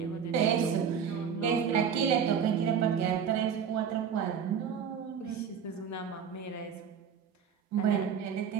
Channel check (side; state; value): left; quieter; 7.4 dB